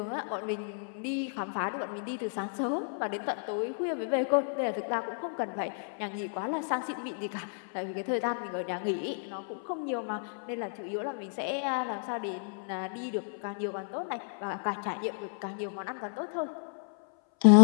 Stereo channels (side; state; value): right; silent; 56 dB below the other